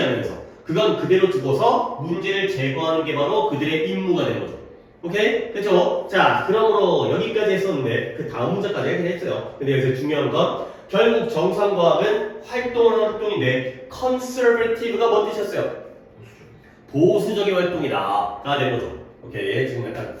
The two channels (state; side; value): identical; both; correlation 1.00